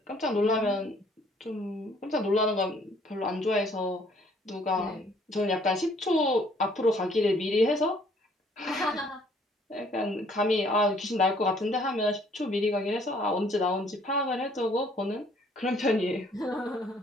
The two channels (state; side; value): normal; both; correlation 0.61